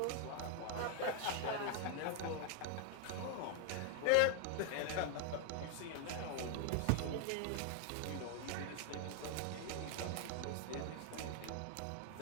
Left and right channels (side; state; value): both; different; correlation 0.00